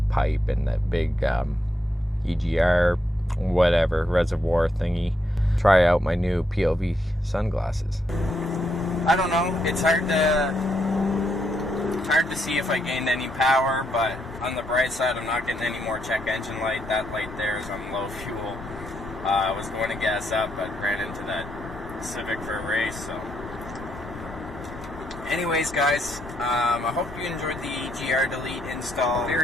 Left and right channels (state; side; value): normal; both; correlation 0.78